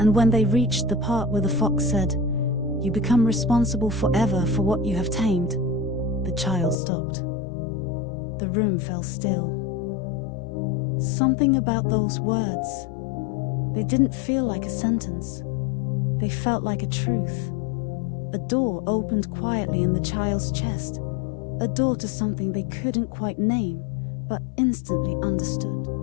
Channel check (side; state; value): right; drops out; at 6.8 s